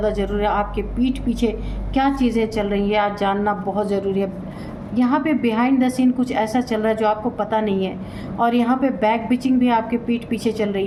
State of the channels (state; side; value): identical; both; correlation 1.00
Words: ज़रूरी है। आपके पीठ पीछे क्या चीज़ें चल रही है आज जानना बहुत ज़रूरी है। यहाँ पे बिहाइंड द सीन कुछ ऐसा चल रहा है जो आपको पता नहीं है, और यहाँ पे बैक बिचिंग भी आपके पीठ पीछे चल